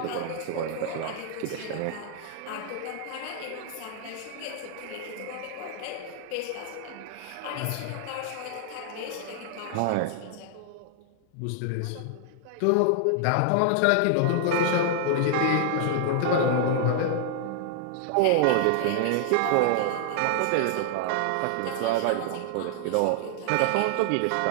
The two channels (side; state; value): both; different; correlation -0.01